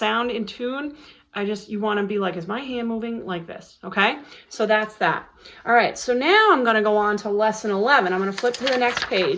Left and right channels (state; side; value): identical; both; correlation 1.00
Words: in tune, you want to be like, is my hand moving like this? Okay, so that's that. All right, so now I'm going to go on to lesson 11. I'm going to flip to the next